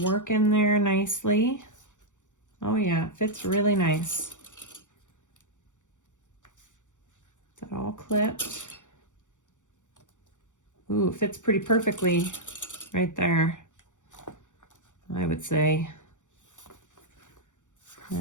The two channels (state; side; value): late; right; 0.86 ms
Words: work in there nicely. Oh yeah, it fits really nice. Is that all clipped? Ooh, it fits pretty perfectly right there, I would say. All